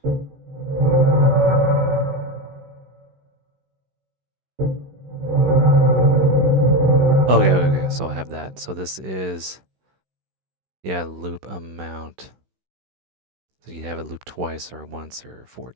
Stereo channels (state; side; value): late; left; 16 ms